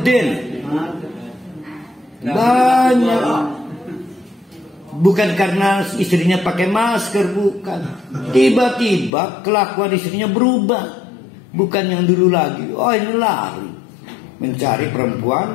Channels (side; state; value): right; drops out; at 9.1 s